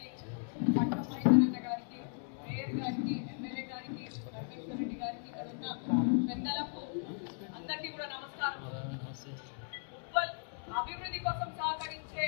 పట్నం మైదరన్న గారికి, మేయర్ గారికి, ఎమ్మెల్యే గారికి, రమేశ్వర్ రెడ్డి గారికి, ఇక్కడ ఉన్న పెద్దలకు అందరికీ కూడా నమస్కారం. ఉప్పల్ అభివృద్ధి కోసం సహకరించే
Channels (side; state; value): right; silent; 54 dB below the other